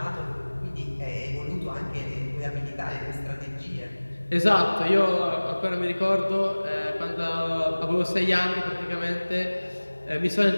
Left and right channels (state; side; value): inverted; both; correlation -1.00